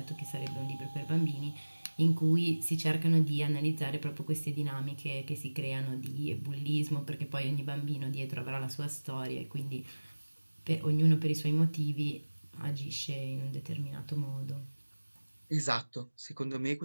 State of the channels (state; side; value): inverted; both; correlation -1.00